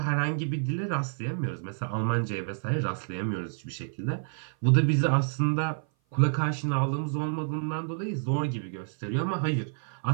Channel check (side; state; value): left; silent; 56 dB below the other